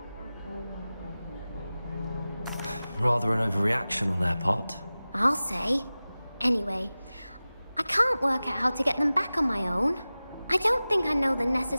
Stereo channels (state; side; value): inverted; both; correlation -0.97